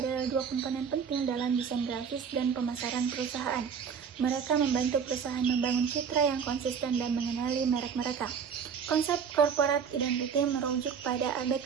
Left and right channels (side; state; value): left; quieter; 6.8 dB